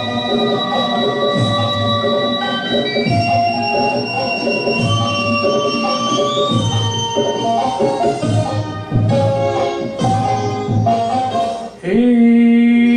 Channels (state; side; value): identical; both; correlation 1.00